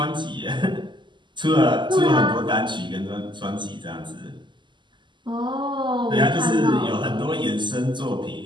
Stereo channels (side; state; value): left; late; 0.22 ms